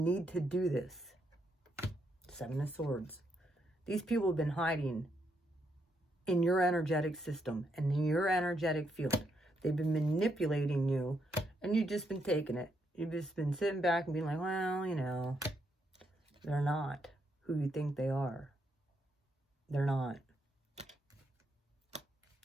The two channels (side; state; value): both; normal; correlation 0.78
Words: to do this. 7 of Swords. These people have been hiding in your energetic system and in your energetic field. They've been manipulating you, and you've just been taking it. You've just been sitting back and being like, well, you know, they're not who you think they are. They're not.